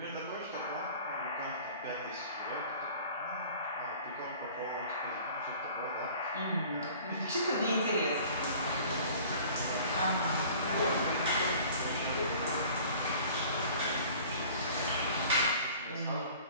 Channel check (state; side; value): inverted; both; correlation -0.47